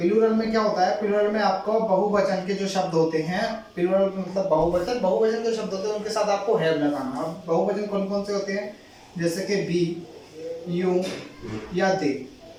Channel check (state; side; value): identical; both; correlation 1.00